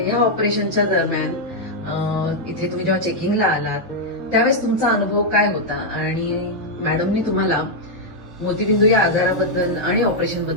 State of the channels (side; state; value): both; normal; correlation -0.03